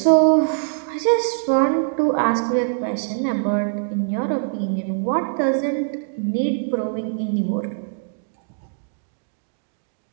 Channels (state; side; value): silent; left; digital silence